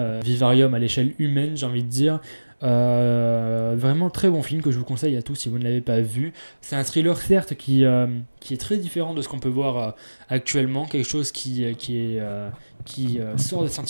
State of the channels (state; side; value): inverted; both; correlation -1.00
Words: vivarium à l'échelle humaine j'ai envie de dire. Vraiment très bon film que je vous conseille à tous si vous ne l'avez pas vu. C'est un thriller certes qui est très différent de ce qu'on peut voir actuellement, quelque chose qui sort des